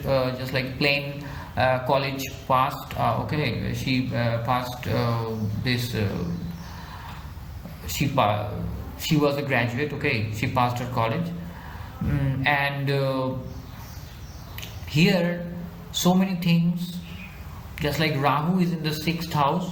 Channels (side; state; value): both; identical; correlation 1.00